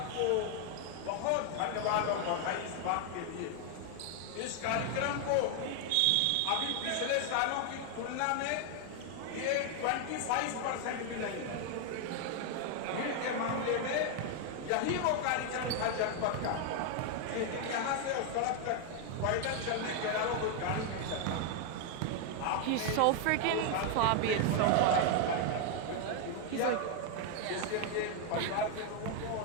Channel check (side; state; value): both; different; correlation 0.00